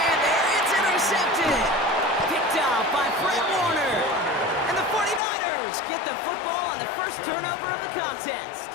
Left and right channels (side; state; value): right; drops out; at 5.2 s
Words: there. It's intercepted. Picked off by Fred Warner. And the 49ers get the football on the 1st turnover of the